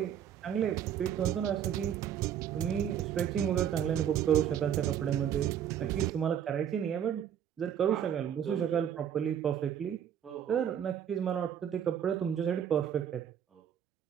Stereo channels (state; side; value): quieter; left; 9.1 dB